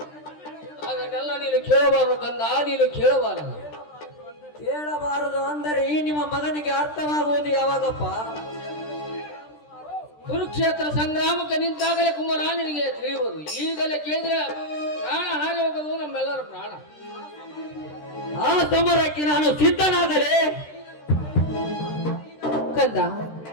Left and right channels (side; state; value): right; late; 13 ms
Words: ಅದನ್ನೆಲ್ಲ ನೀನು ಕೇಳಬಾರದು ಕಂದ, ನೀನು ಕೇಳಬಾರದು. ಕೇಳಬಾರದು ಅಂದರೆ ಈ ನಿಮ್ಮ ಮಗನಿಗೆ ಅರ್ಥವಾಗುವುದು ಯಾವಾಗಪ್ಪ? ಕುರುಕ್ಷೇತ್ರ ಸಂಗ್ರಾಮಕ್ಕೆ ನಿಂತಾಗಲೇ ಕುಮಾರ ನಿನಗೆ ತಿಳಿಯುವುದು. ಈಗಲೇ ಕೇಳಿದ್ರೆ ಪ್ರಾಣ ಹಾರಿ ಹೋಗೋದು ನಮ್ಮೆಲ್ಲರ ಪ್ರಾಣ. ಆ ಸಮರಕ್ಕೆ ನಾನು ಸಿದ್ಧನಾಗಲೇ. ಕಂದ,